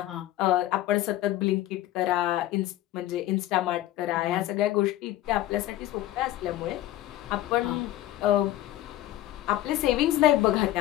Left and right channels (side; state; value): right; quieter; 14.2 dB